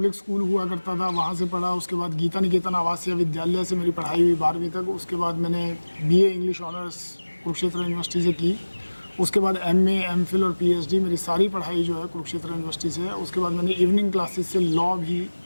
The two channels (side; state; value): both; inverted; correlation -1.00